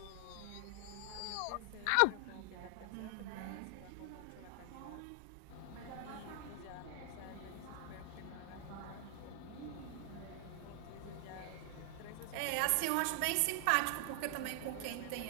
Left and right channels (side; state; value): both; different; correlation 0.00